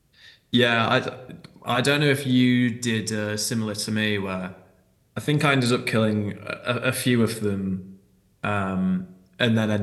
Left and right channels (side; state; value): both; identical; correlation 1.00